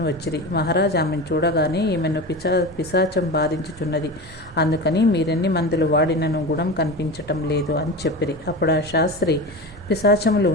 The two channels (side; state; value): both; normal; correlation 0.27